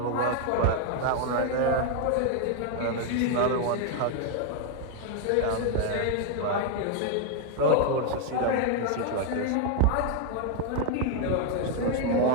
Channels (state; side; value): different; both; correlation 0.00